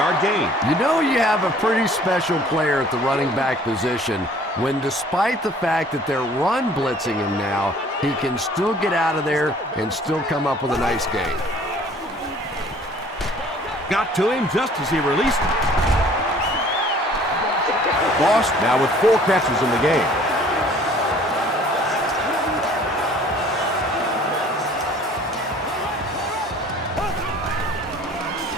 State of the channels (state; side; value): normal; both; correlation 0.53